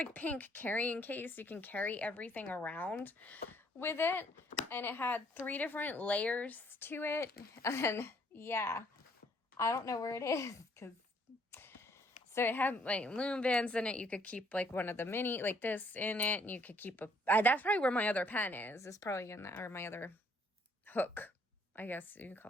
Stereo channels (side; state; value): both; normal; correlation 0.65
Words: pink carrying case. You can carry everything around with it. And it had 3 different layers to it. And, yeah. I don't know where it is, because... So it had, like, loom bands in it. You could keep, like, one of the mini, like, this in it. And you could keep a... that's probably where my other pen is. It's probably in that, or my other hook. I guess you can